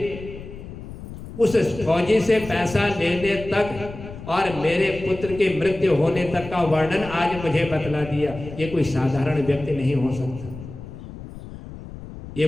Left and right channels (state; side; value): noise; left; rumble, 13 dB below the sound